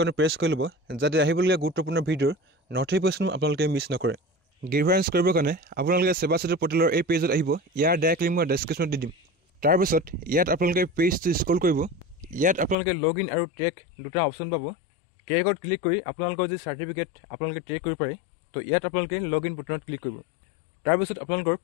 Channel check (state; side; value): drops out; right; at 12.8 s